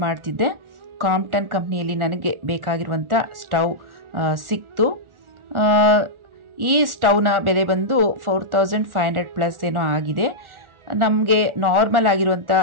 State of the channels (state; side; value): late; left; 1.4 ms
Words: ಮಾಡ್ತಿದ್ದೆ. ಕ್ರಾಂಪ್ಟನ್ ಕಂಪ್ನಿಯಲ್ಲಿ ನನಗೆ ಬೇಕಾಗಿರುವಂಥ ಸ್ಟವ್ ಸಿಕ್ತು. ಈ ಸ್ಟವ್ನ ಬೆಲೆ ಬಂದು 4500+ ಏನೋ ಆಗಿದೆ. ನಮಗೆ ನಾರ್ಮಲ್ ಆಗಿರುವಂಥ